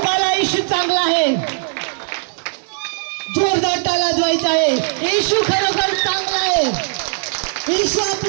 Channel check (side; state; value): left; silent; 67 dB below the other